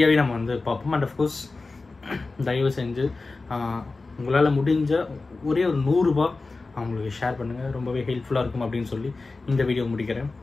நம்ம வந்து பார்ப்போம். அண்ட் அஃப்கோர்ஸ் தயவு செஞ்சு உங்களால் முடிஞ்ச ஒரே ஒரு 100 ரூபாய் அவங்களுக்கு ஷேர் பண்ணுங்கள், ரொம்பவே ஹெல்ப்ஃபுல்லாக இருக்கும் அப்படின்னு சொல்லி இந்த வீடியோ முடிக்கிறேன்.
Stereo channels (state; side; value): quieter; right; 3.7 dB